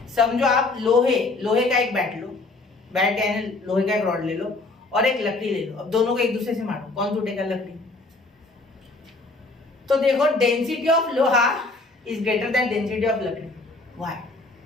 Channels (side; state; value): right; quieter; 3.3 dB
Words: समझो आप लोहे का एक बैट लो, बैट यानी लोहे का एक रॉड ले लो और एक लकड़ी ले लो। अब दोनों को एक दूसरे से मारो, कौन टूटेगा, लकड़ी। तो देखो डेंसिटी ऑफ लोहा is greater than density of लकड़ी। व्हाई?